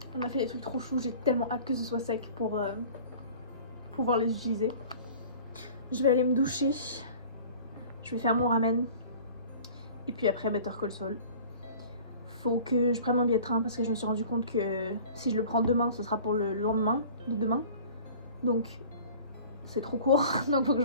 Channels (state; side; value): inverted; both; correlation -0.45